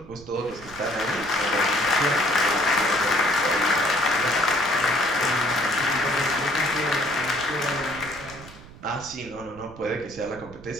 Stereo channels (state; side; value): noise; right; rumble, 18 dB below the sound